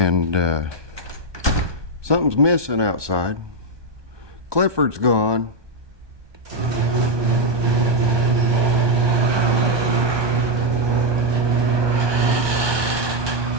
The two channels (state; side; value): late; left; 1.2 ms